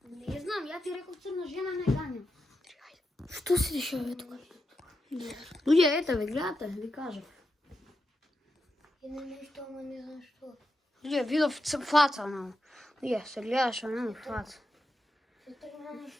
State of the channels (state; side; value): normal; both; correlation 0.87